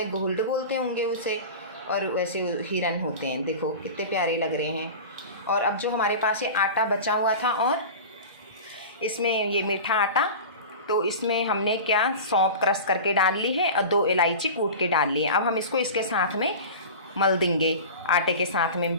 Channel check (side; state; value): both; inverted; correlation -0.32